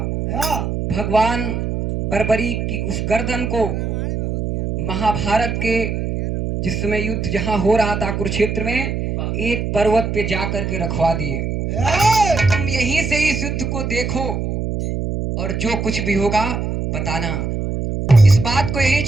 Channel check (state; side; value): noise; right; hum, 2 dB below the sound